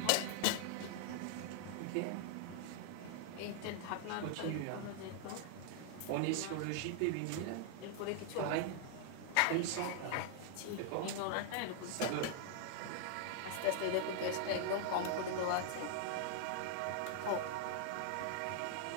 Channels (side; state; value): both; different; correlation 0.00